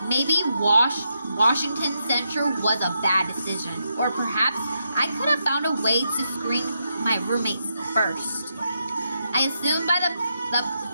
Maybe Washington Central was a bad decision, or perhaps I could have found a way to screen my roommates first. I assume by the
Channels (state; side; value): inverted; both; correlation -0.82